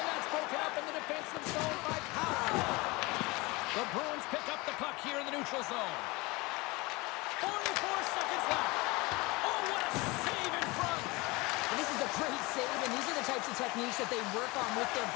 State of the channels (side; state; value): right; quieter; 24.0 dB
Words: that's broken up in the defensive zone by Powell. The Bruins pick up the puck here in the neutral zone. 44 seconds left. Oh, what a save in front. And this is a great save, and these are the types of techniques that they work on with their